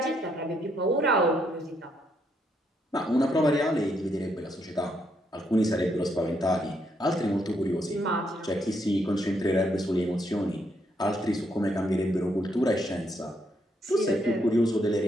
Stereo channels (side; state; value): both; normal; correlation 0.75